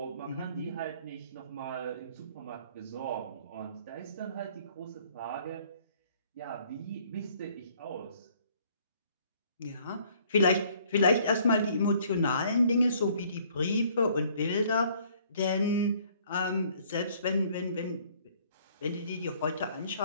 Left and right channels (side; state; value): both; inverted; correlation -0.60